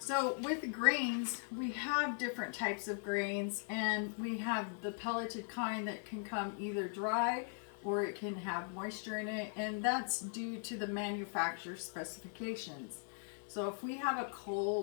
with grains, we have different types of grains, and we have the pelleted kind that can come either dry or it can have moisture in it, and that's due to the manufacturer's specifications. So if we have a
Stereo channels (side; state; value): right; silent; 52 dB below the other